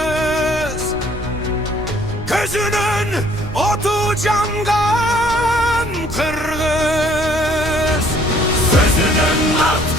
Gözünün otu cangan kırgız. Sözünün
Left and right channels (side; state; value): right; noise; rumble, 12 dB below the sound